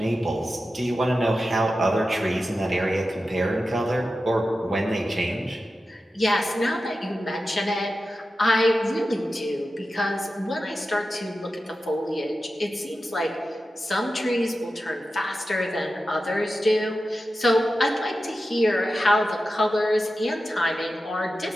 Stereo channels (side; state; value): both; normal; correlation 0.92